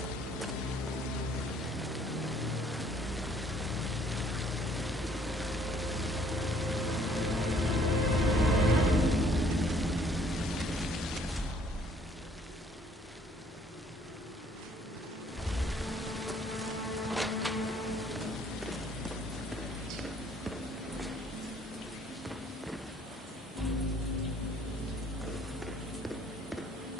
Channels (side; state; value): both; normal; correlation 0.61